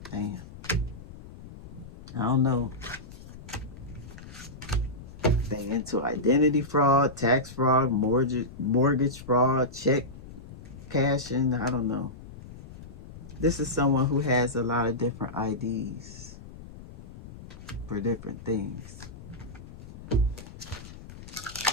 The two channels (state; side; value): noise; left; rumble, 15 dB below the sound